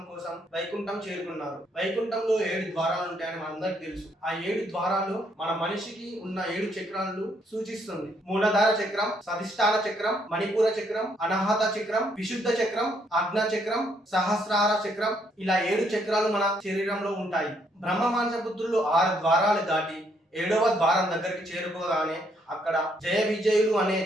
కోసం వైకుంఠం చేరుకున్నారు. వైకుంఠంలో 7 ద్వారాలు ఉంటాయని మనందరికి తెలుసు. ఆ 7 ద్వారాలు మన మనిషికి ఉన్న 7 చక్రాలను సూచిస్తుంది. మూలధార చక్రం, సధిష్టాన చక్రం, మణిపూర చక్రం, అనాహత చక్రం, విశుద్ధ చక్రం, ఆజ్ఞా చక్రం, సహస్రార చక్రం, ఇలా 7 చక్రాలు మన శరీరంలో ఉంటాయి. బ్రహ్మమాంసపుత్రులు 6 ద్వారాలు దాటి 7వ ద్వారం దగ్గరికి చేరుకోగానే అక్కడ జయ విజయులు అనే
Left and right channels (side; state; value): both; normal; correlation 0.71